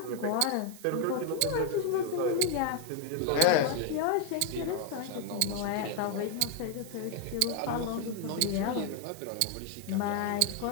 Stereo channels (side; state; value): both; different; correlation 0.01